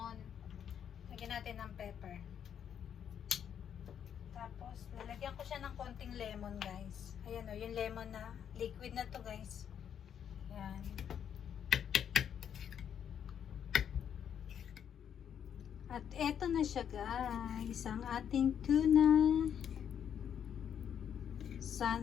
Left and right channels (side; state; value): right; quieter; 8.6 dB